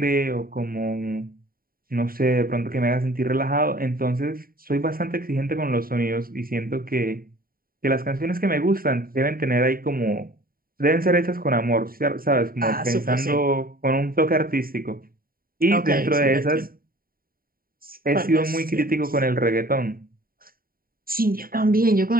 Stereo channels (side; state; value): left; late; 0.43 ms